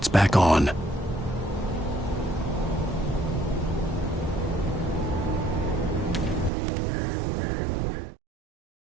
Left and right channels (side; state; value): left; drops out; at 6.5 s